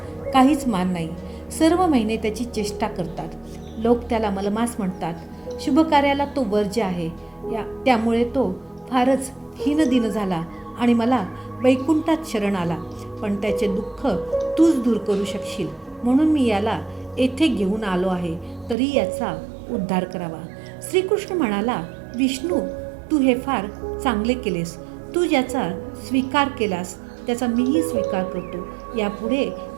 काहीच मान नाही. सर्व महिने त्याची चेष्टा करतात. लोक त्याला मलमास म्हणतात. शुभ कार्याला तो वर्ज्य आहे. त्यामुळे तो फारच हीनदीन झाला आणि मला वैकुंठात शरण आला. पण त्याचे दुःख तूच दूर करू शकशील, म्हणून मी याला येथे घेऊन आलो आहे. तरी याचा उद्धार करावा. श्रीकृष्ण म्हणाला, विष्णू, तू हे फार चांगले केलेस. तू ज्याचा स्वीकार केलास त्याचा मीही स्वीकार करतो. यापुढे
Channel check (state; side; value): drops out; left; at 18.8 s